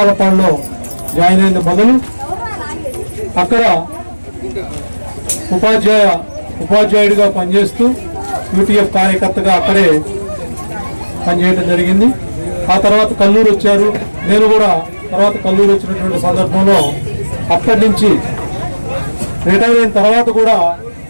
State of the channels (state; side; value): inverted; both; correlation -1.00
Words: జాయిన్ అయిన మొదలు అక్కడ ఉపాధ్యాయుడిగా పనిచేస్తూ యూటీఎఫ్ కార్యకర్తగా అక్కడే పనిచేయడం జరిగింది. ఆ తర్వాత కల్లూరు వచ్చారు. నేను కూడా తర్వాత కల్లూరు వచ్చినటువంటి సందర్భంలో అక్కడి నుంచి రిటైర్ అయిన తర్వాత కూడా